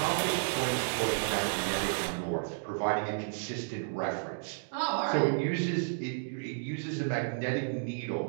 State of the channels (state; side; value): silent; left; digital silence